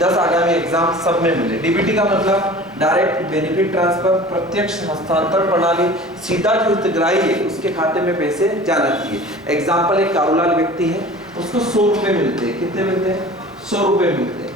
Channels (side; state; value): both; normal; correlation 0.41